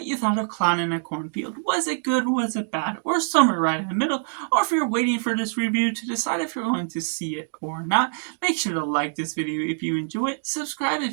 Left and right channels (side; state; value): left; silent; digital silence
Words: you thought of Clown in a Cornfield. Was it good? Was it bad? Or somewhere right in the middle? Or if you're waiting for this review to decide if you're going to see it or not, make sure to like this video if you enjoy it. Subscribe